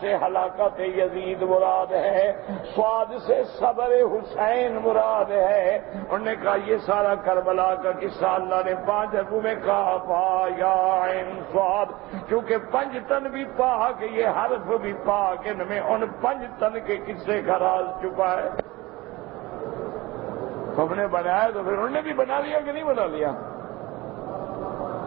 ہلاکت یزید مراد ہے، صاد سے صبر حسین مراد ہے۔ انہوں نے کہا یہ سارا کربلا کا قصہ اللہ نے 5 حرفوں میں کہا ہا یا عین صاد، کیونکہ 5 تن بھی پاک، یہ حرف بھی پاک، ان میں ان 5 تن کے قصے کا راز چھپا ہے۔ تم نے بنایا تو پھر انہوں نے بھی بنا لیا کہ نہیں بنا لیا؟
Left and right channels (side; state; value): left; quieter; 20.7 dB